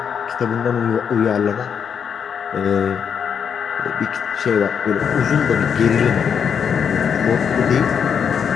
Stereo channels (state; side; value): quieter; right; 7.3 dB